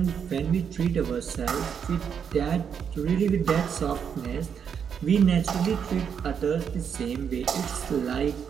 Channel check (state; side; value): quieter; left; 7.4 dB